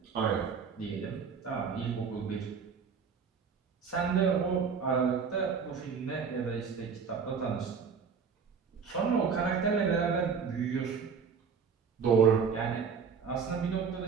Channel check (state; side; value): quieter; left; 6.0 dB